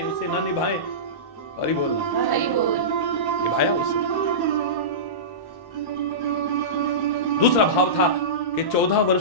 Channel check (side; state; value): right; late; 1.1 ms